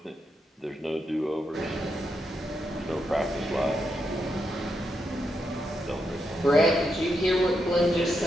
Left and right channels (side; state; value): both; normal; correlation 0.83